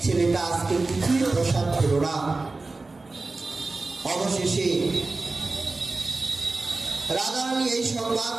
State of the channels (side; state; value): left; quieter; 3.5 dB